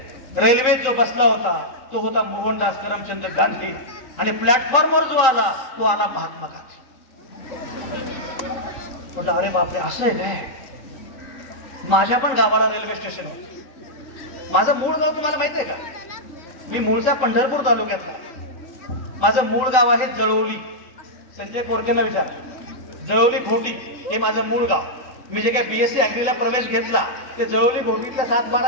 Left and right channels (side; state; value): right; late; 3.9 ms